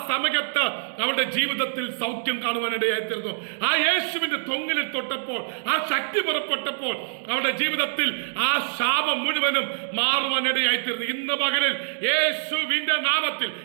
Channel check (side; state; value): left; silent; digital silence